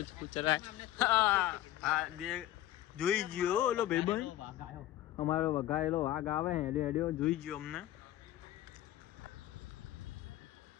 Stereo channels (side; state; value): right; quieter; 14.1 dB